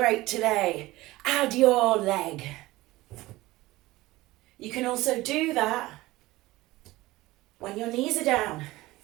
today, add your leg. You can also do that when your knees are down.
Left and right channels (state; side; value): quieter; left; 18.8 dB